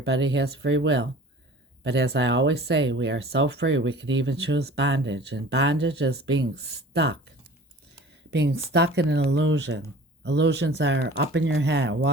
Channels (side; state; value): both; normal; correlation 0.44